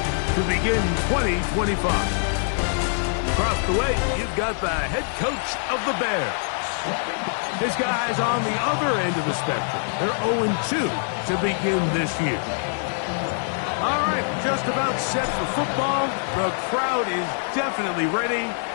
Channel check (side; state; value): right; silent; 63 dB below the other